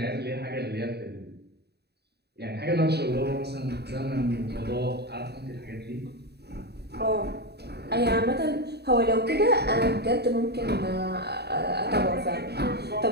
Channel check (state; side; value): late; left; 0.48 ms